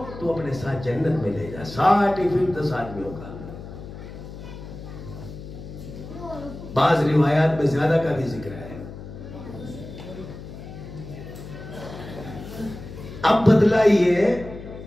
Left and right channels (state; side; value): noise; left; hum, 13 dB below the sound